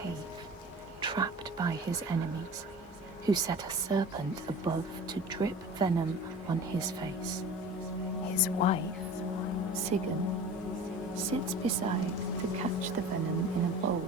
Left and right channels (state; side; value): normal; both; correlation 0.39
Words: trapped by his enemies, who set a serpent above to drip venom on his face. His wife, Sigyn, sits beside to catch the venom in a